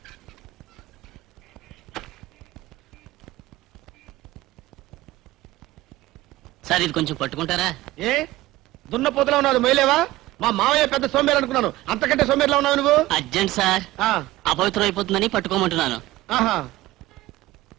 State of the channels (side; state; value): left; quieter; 17.4 dB